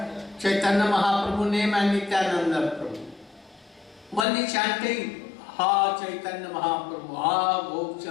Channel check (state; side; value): drops out; right; at 4.2 s